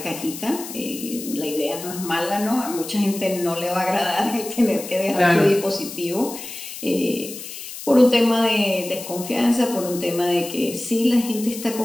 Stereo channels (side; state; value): left; noise; hiss, 11 dB below the sound